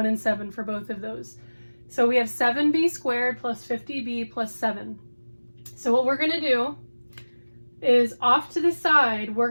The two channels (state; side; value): inverted; both; correlation -1.00